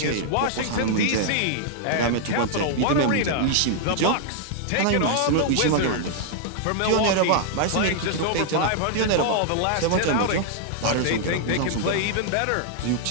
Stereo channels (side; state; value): both; different; correlation -0.01